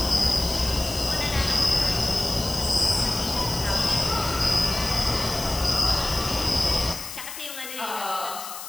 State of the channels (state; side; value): noise; left; hiss, 10 dB below the sound